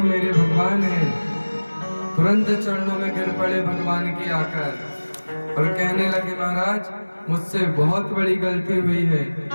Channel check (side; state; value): both; inverted; correlation -1.00